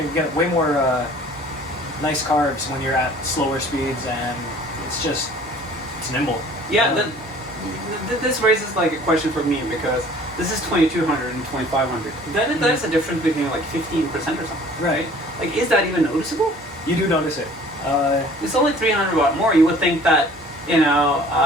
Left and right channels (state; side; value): normal; both; correlation 0.51